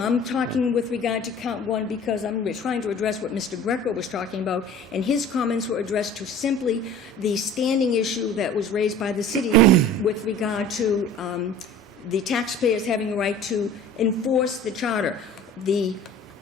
talking with regard to count 1 because I'm trying to address what Mr. Greco was talking about, and his comments were addressed to simply the standing issue that was raised by the city with regard to the taxpayers having a right to enforce the charter.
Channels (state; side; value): normal; both; correlation 0.44